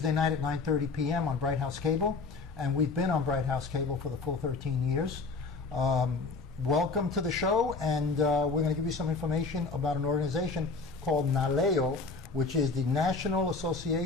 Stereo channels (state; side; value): quieter; right; 4.1 dB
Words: night at 9:30 p.m. on Bright House Cable, and we've been on Bright House Cable for the full 13 years. Welcome to the show, and we're going to give you some information about an organization called NALEO, which is the National